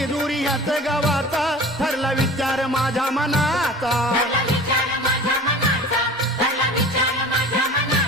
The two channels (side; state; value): both; normal; correlation 0.40